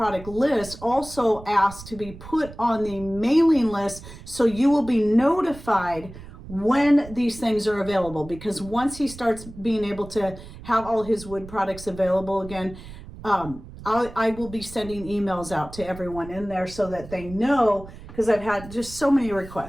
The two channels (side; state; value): right; noise; rumble, 15 dB below the sound